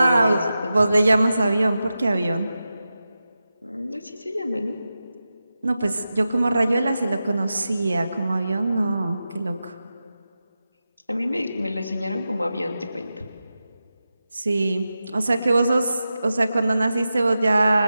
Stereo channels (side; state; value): both; inverted; correlation -0.92